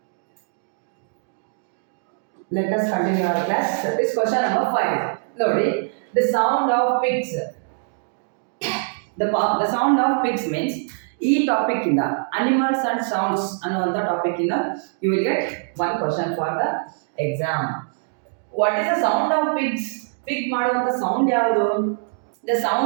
Let us continue our class. This question number 5. Lodi, the sound of pigs. The sound of pigs means ಈ topic ಇಂದ animals and sounds ಅನ್ನುವಂಥ topic ಇಂದ you will get one question for the exam. What is the sound of pigs? Pig ಮಾಡುವಂಥ sound ಯಾವುದು? The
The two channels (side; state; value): left; silent; digital silence